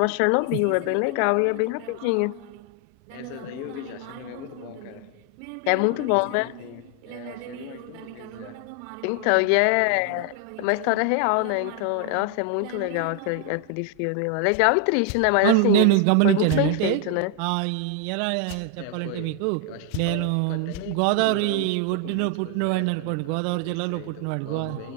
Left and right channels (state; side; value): different; both; correlation 0.00